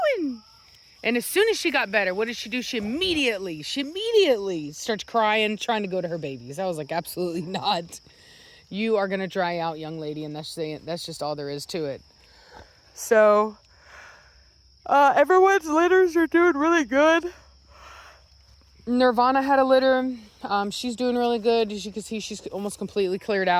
And as soon as she got better, what did she do? She immediately starts crying, trying to go to her babies. I was like, absolutely not. You are going to dry out, young lady, and that's just all there is to it. So, everyone's litters are doing really good. Nirvana had a litter. She's doing really good. As you can see, she's almost completely cleared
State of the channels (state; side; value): identical; both; correlation 1.00